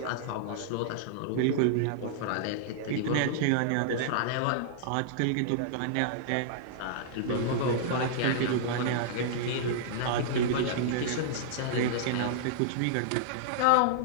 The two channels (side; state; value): both; different; correlation -0.02